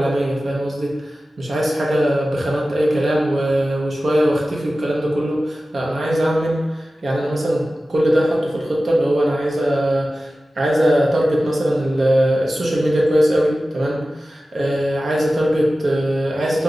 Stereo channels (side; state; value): both; normal; correlation 0.95